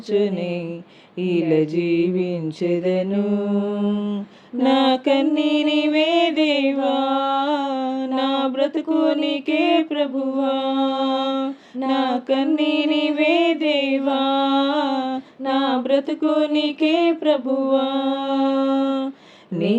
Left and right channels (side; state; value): both; identical; correlation 1.00